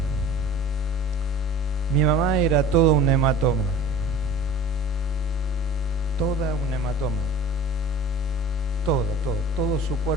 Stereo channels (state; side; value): normal; both; correlation 0.42